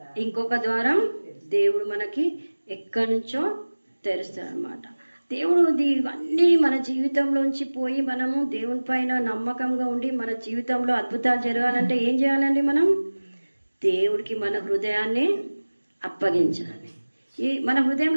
ఇంకొక ద్వారం దేవుడు మనకి ఎక్కడి నుంచో తెరుస్తాడు అనమాట. దేవుడు ఇవన్నీ మన జీవితంలోంచి పోయి మనము దేవుని పైన నమ్మకంగా ఉండి మన జీవితంలో అద్భుతాలు జరగాలంటే ఏం చేయాలండి? మనం దేవుడికి మన హృదయాన్ని అప్పగించాలి. మన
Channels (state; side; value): inverted; both; correlation -1.00